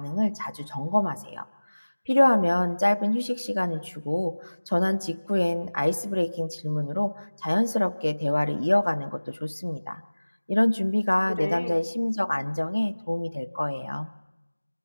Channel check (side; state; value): both; inverted; correlation -1.00